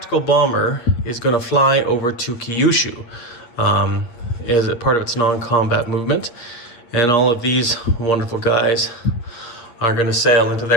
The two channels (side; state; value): right; late; 8.7 ms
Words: bomber is going to fly over to Kyushu as a part of its non-combat movement. And all of these wonderful guys are going to sail into